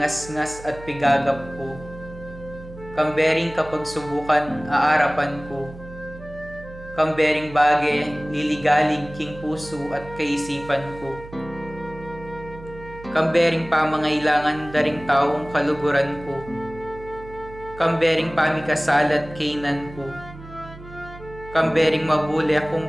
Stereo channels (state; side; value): noise; right; hum, 16 dB below the sound